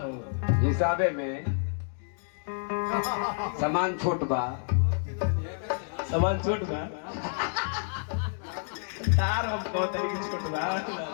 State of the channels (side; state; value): right; silent; digital silence